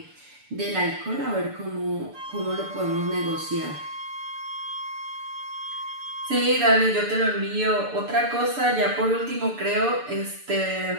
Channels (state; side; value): late; left; 6.8 ms